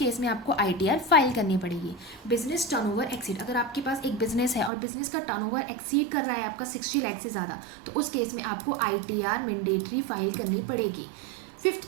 में आपको ITR फाइल करनी पड़ेगी। Business turnover exceed. अगर आपके पास एक बिजनेस है और बिजनेस का टर्नओवर एक्सीड कर रहा है आपका 60 लाख से ज़्यादा, तो उस केस में आपको ITR मैंडेटरी फाइल करनी पड़ेगी। Fifth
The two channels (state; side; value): drops out; left; at 4.7 s